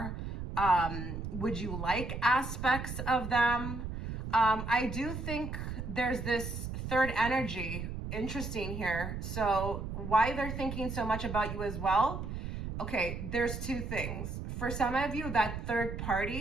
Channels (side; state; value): right; noise; rumble, 6 dB below the sound